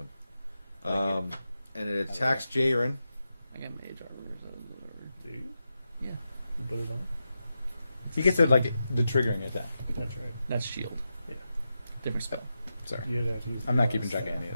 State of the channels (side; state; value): both; inverted; correlation -0.89